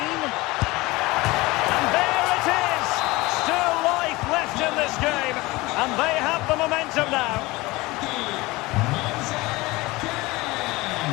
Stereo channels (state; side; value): quieter; right; 21.4 dB